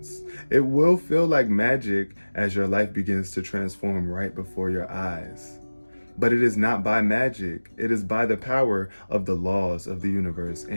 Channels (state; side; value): inverted; both; correlation -1.00